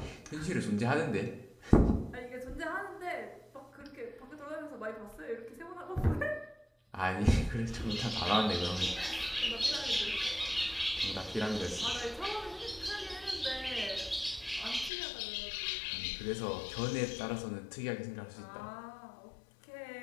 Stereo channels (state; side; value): drops out; right; at 14.9 s